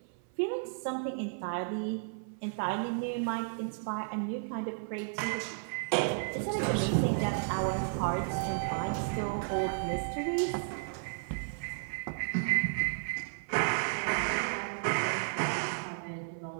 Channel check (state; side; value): silent; left; 56 dB below the other